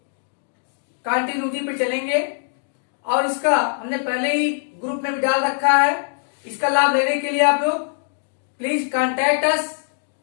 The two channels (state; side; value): silent; right; digital silence